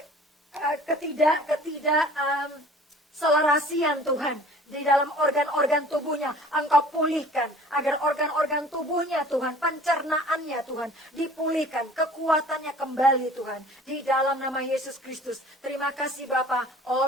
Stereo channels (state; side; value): normal; both; correlation 0.48